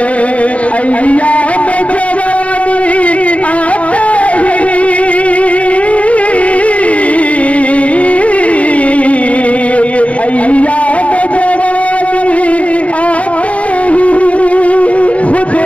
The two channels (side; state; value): right; late; 0.066 ms